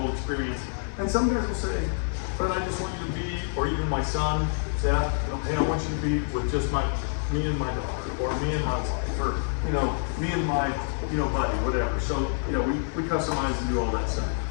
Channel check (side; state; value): right; silent; digital silence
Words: experience. And some guys will say, but I just want you to be, or even my son, Seth, hey, I want you to be with just me and my daughter, or me and my wife. for, you know, me and my, you know, buddy, whatever. So, you know, we customize and do all that stuff.